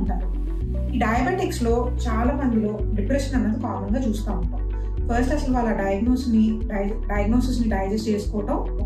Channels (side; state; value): both; identical; correlation 1.00